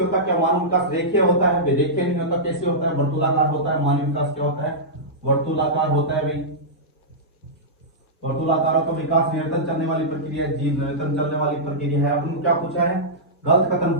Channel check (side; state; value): both; normal; correlation -0.13